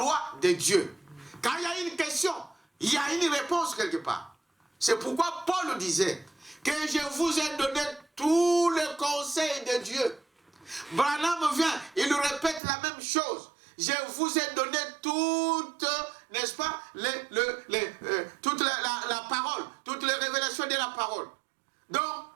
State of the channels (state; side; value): drops out; left; at 12.6 s